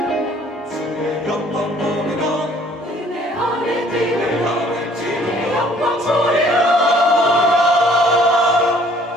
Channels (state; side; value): normal; both; correlation 0.57